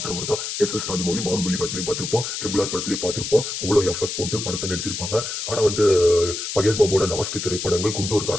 தான் எஸ் ராஜமௌலி. பாகுபலி படத்துலையும் பார்த்திருப்போம், ட்ரிபிள் ஆர் படத்துலையும் பார்த்திருப்போம். அவ்வளோ எஃபெக்ட் போட்டு படத்தை நடிச்சிருப்பாங்க. ஆனா வந்து மகேஷ் பாபுவோட லாஸ்ட் திரைப்படங்கள்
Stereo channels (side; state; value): left; noise; hiss, 5 dB below the sound